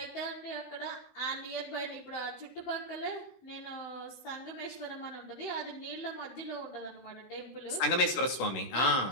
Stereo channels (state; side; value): late; right; 16 ms